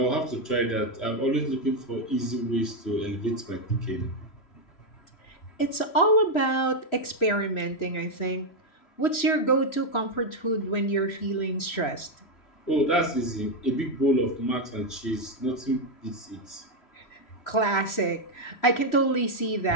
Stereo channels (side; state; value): right; late; 3.0 ms